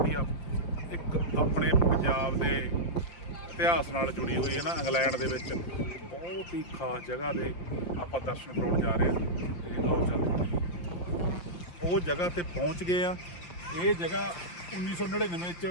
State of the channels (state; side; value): late; right; 5.8 ms